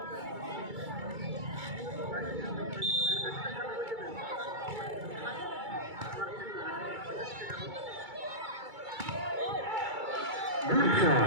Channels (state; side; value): late; left; 2.3 ms